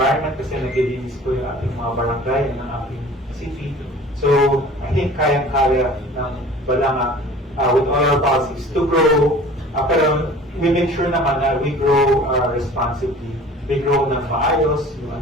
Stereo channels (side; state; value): both; normal; correlation 0.45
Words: kasi naglilinis po yung ating mga barangay ng ating city. So, I think kayang-kaya ng Balanga with all our policies to grow, pero we make sure naman na we grow responsibly. We grow ng maayos,